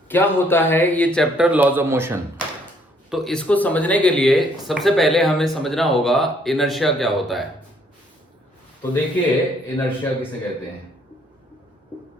क्या होता है, ये चैप्टर लॉज ऑफ मोशन। तो इसको समझने के लिए सबसे पहले हमें समझना होगा इनर्शिया क्या होता है। तो देखिए इनर्शिया किसे कहते हैं।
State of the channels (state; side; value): normal; both; correlation 0.65